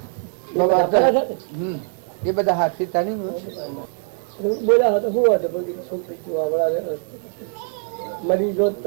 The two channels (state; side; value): silent; left; 64 dB below the other